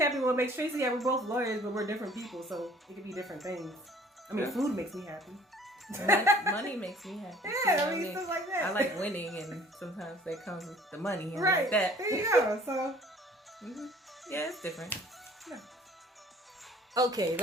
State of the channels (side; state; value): both; normal; correlation 0.52